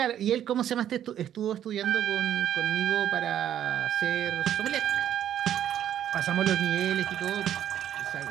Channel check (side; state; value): left; quieter; 10.7 dB